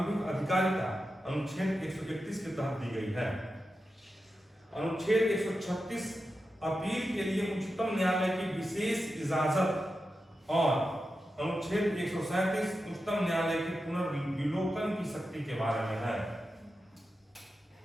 अधिकारिता अनुच्छेद 131 के तहत दी गई है। अनुच्छेद 136 अपील के लिए उच्चतम न्यायालय की विशेष इजाजत, और अनुच्छेद 137 उच्चतम न्यायालय के पुनर्विलोकन की शक्ति के बारे में है।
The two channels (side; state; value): both; normal; correlation 0.90